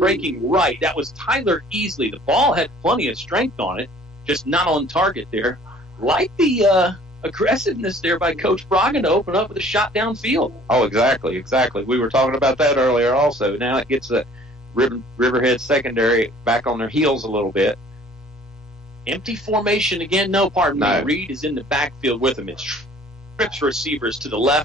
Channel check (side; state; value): both; normal; correlation 0.52